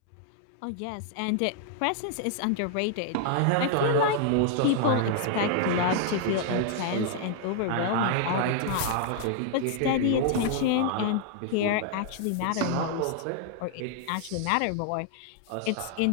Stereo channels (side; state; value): both; different; correlation 0.00